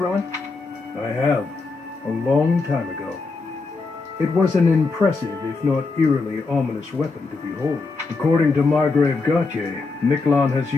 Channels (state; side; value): quieter; right; 4.0 dB